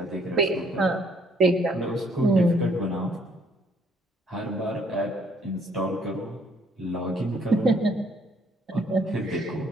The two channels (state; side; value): normal; both; correlation 0.65